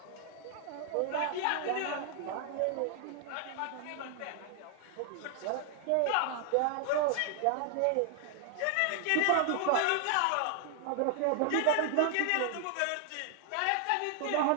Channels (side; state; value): both; different; correlation 0.00